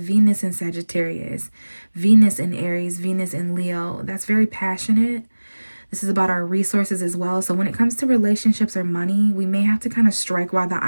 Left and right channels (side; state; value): both; inverted; correlation -1.00